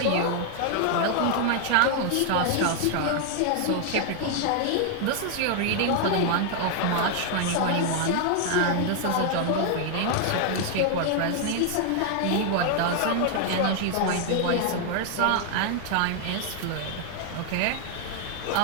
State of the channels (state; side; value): different; both; correlation 0.00